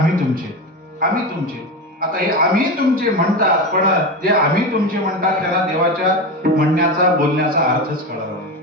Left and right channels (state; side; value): normal; both; correlation 0.20